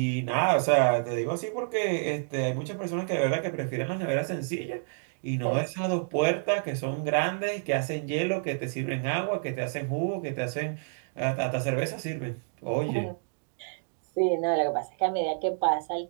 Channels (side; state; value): left; silent; digital silence